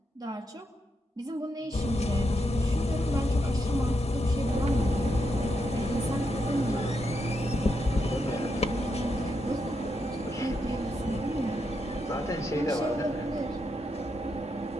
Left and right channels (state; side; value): normal; both; correlation 0.82